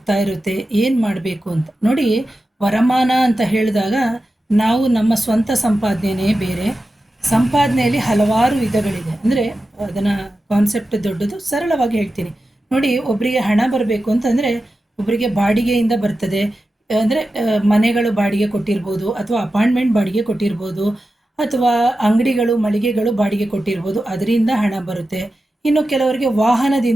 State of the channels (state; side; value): normal; both; correlation 0.92